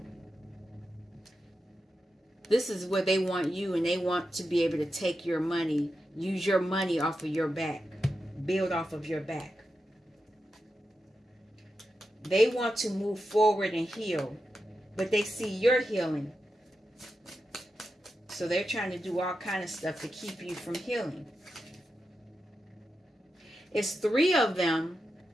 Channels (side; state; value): both; normal; correlation 0.89